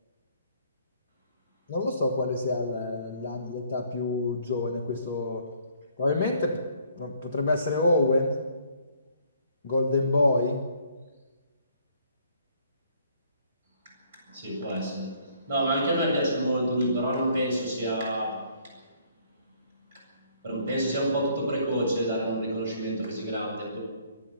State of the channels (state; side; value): inverted; both; correlation -0.64